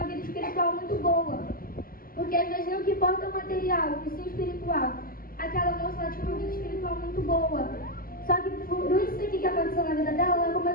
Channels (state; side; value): late; right; 0.42 ms